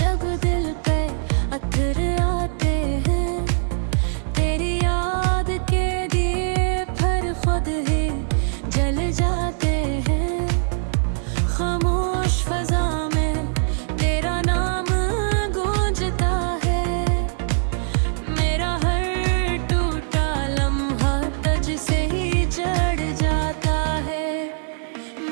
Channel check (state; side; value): silent; left; digital silence